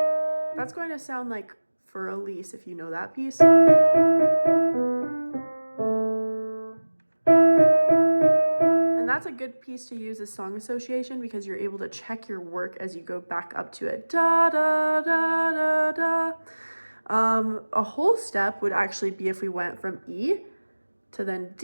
going to sound like For Elise, if you know that piece. And that's a good piece to use as song association because you're able to check your work as you go back up to it. Da, da, da, da, da. A whole step would actually be if we went from E to then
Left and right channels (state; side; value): inverted; both; correlation -1.00